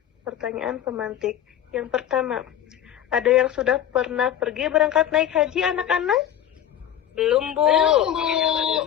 Pertanyaan pemantik. Yang pertama, ada yang sudah pernah pergi berangkat naik haji anak-anak? Belum Bu.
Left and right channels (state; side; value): quieter; right; 10.4 dB